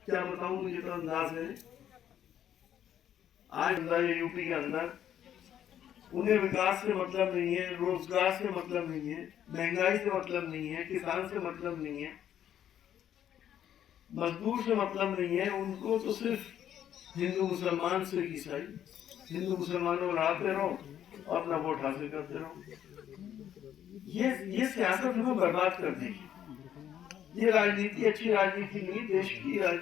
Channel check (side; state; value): right; quieter; 10.3 dB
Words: क्या बताऊं, मुझे तो अंदाज है। आज यूपी के अंदर उन्हें विकास से मतलब नहीं है, रोजगार से मतलब नहीं है, महंगाई से मतलब नहीं है, किसान से मतलब नहीं है, मजदूर से मतलब नहीं है। उनको तो सिर्फ हिंदू मुसलमान से ईसाई, हिंदू मुसलमानों लड़ाते रहो और अपना वोट हासिल करते रहो। ये सियासत हमें बर्बाद कर देगी। ये राजनीति अच्छी राजनीति नहीं, देश की